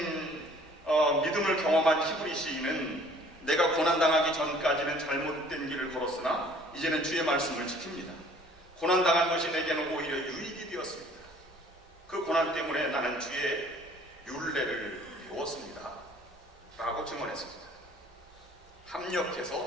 믿음을 경험한 히브리 시인은 내가 고난당하기 전까지는 잘못된 길을 걸었으나 이제는 주의 말씀을 지킵니다. 고난당한 것이 내게는 오히려 유익이 되었습니다. 그 고난 때문에 나는 주의 율례를 배웠습니다. 라고 증언했습니다.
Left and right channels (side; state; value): both; normal; correlation 0.54